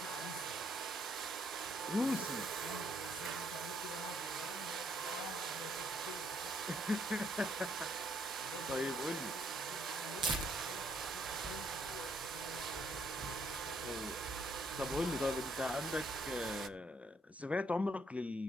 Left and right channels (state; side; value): normal; both; correlation 0.70